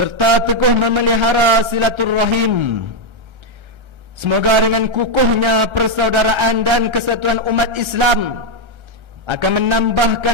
teguh memelihara silaturrahim. Semoga dengan kukuhnya persaudaraan dan kesatuan umat Islam akan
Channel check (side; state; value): left; late; 1.3 ms